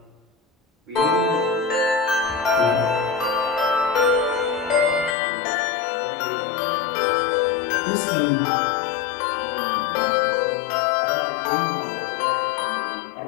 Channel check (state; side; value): drops out; right; at 5.2 s